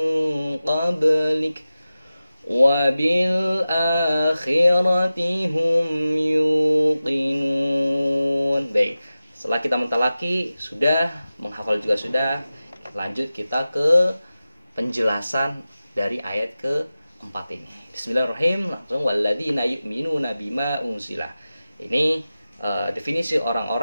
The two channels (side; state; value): both; inverted; correlation -0.95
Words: qablik wa bil akhirati hum yuqinun. Baik, setelah kita mentalaki sudah, menghafal juga sudah, lanjut kita ke penjelasan dari ayat ke-4 ini. Bismillahirrahmanirrahim. Langsung walladzina yu'minuna bima unzila. Ini definisi